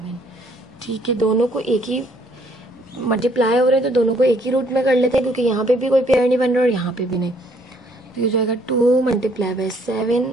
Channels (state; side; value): normal; both; correlation 0.65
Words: ठीक है, दोनों को एक ही मल्टीप्लाई हो रहे हैं तो दोनों को एक ही रूट में कर लेते हैं, क्योंकि यहाँ पे भी कोई पेयर नहीं बन रहा और यहाँ पे भी नहीं। तो ये जाएगा 2 multiply bye